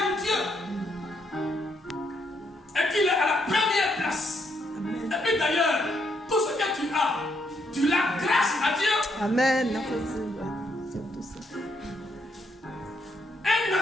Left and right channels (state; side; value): normal; both; correlation 0.76